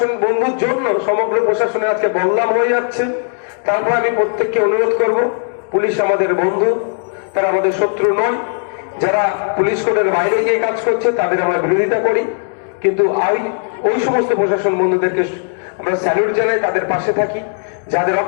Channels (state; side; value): silent; right; digital silence